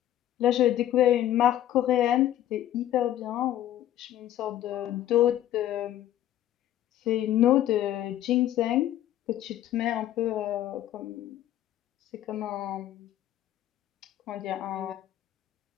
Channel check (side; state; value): right; quieter; 12.4 dB